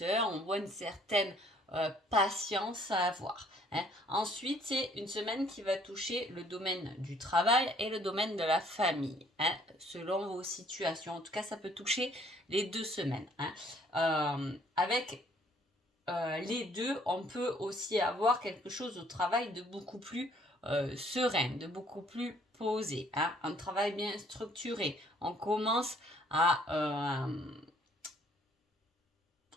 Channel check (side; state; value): both; normal; correlation 0.61